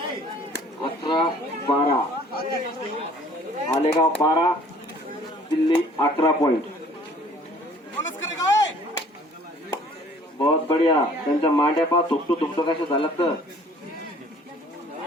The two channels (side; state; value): both; normal; correlation 0.54